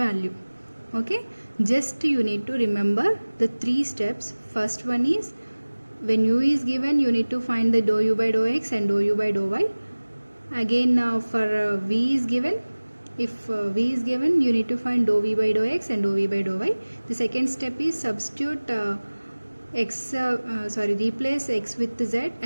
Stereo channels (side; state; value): both; inverted; correlation -1.00